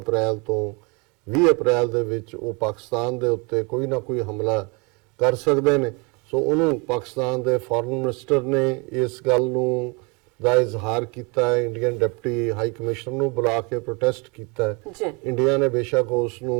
ਤੋਂ 20 ਅਪ੍ਰੈਲ ਦੇ ਵਿੱਚ ਉਹ ਪਾਕਿਸਤਾਨ ਦੇ ਉੱਤੇ ਕੋਈ ਨਾ ਕੋਈ ਹਮਲਾ ਕਰ ਸਕਦੇ ਨੇ। ਸੋ ਉਹਨੂੰ ਪਾਕਿਸਤਾਨ ਦੇ ਫੋਰਨ ਮਿਨਿਸਟਰ ਨੇ ਇਸ ਗੱਲ ਨੂੰ ਦਾ ਇਜ਼ਹਾਰ ਕੀਤਾ ਹੈ, ਇੰਡੀਅਨ ਡਿਪਟੀ ਹਾਈ ਕਮਿਸ਼ਨਰ ਨੂੰ ਬੁਲਾ ਕੇ ਪ੍ਰੋਟੈਸਟ ਕੀਤਾ ਹੈ। ਜੀ ਇੰਡੀਆ ਨੇ ਬੇਸ਼ੱਕ ਉਸ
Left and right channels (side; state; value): left; quieter; 30.0 dB